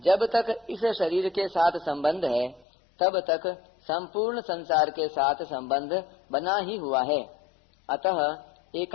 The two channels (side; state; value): right; drops out; at 2.7 s